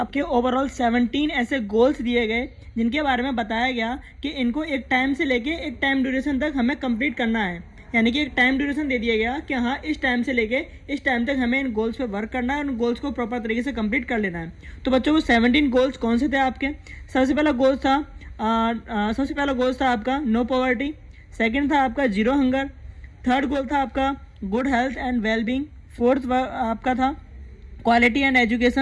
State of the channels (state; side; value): identical; both; correlation 1.00